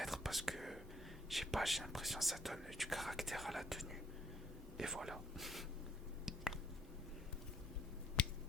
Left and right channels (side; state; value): both; normal; correlation 0.66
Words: parce que, je sais pas, j'ai l'impression que ça donne du caractère à la tenue. Et voilà.